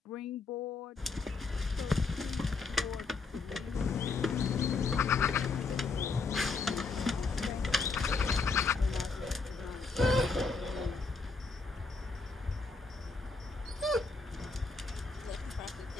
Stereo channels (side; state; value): right; quieter; 4.1 dB